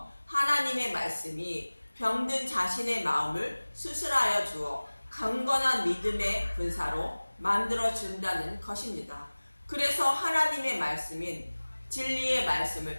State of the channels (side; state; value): both; inverted; correlation -1.00